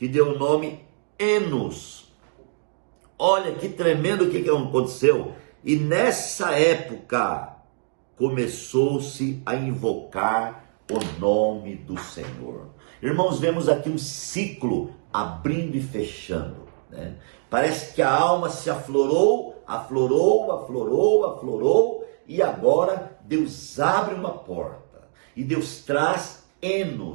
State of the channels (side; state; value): left; silent; 62 dB below the other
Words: deu o nome Enos. Olha que tremendo o que aconteceu. E nessa época começou-se a invocar o nome do Senhor. Irmãos, vemos aqui um ciclo abrindo e fechando, né? Parece que a alma se aflorou, e agora Deus abre uma porta e Deus traz